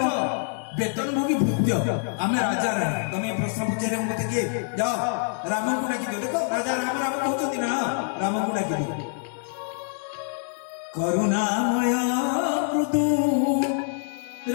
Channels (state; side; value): silent; right; digital silence